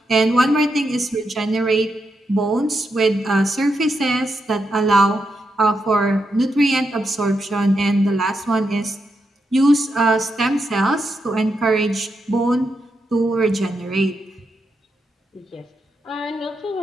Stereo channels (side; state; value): both; normal; correlation 0.84